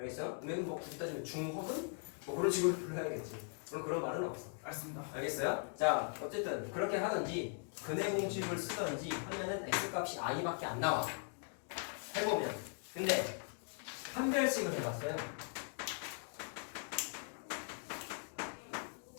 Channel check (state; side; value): silent; right; 51 dB below the other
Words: 그러면 뭐 굳이 따지면 중허근? 뭐 그런 식으로 불러야겠지. 그런 말은 없어. 알겠습니다. 알겠어요? 자, 어쨌든 그렇게 하든지 근해 공식을 쓰든지 하면은 x 값이 i밖에 안 나와. 해보면. 근데 판별식을 해봤어요.